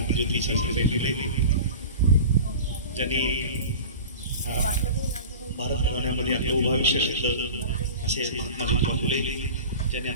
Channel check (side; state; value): both; inverted; correlation -0.35